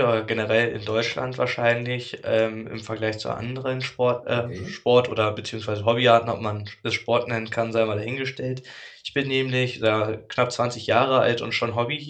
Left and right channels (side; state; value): both; identical; correlation 1.00